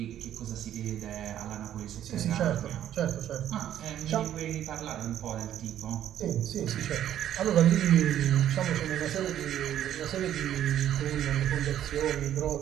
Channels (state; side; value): quieter; left; 11.2 dB